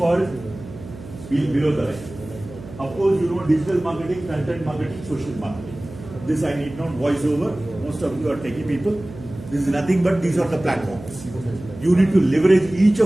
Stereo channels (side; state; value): right; noise; hum, 15 dB below the sound